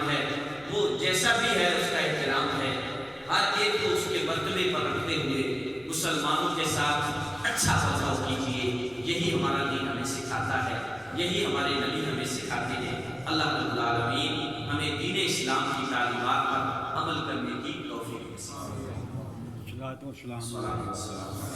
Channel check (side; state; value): both; identical; correlation 1.00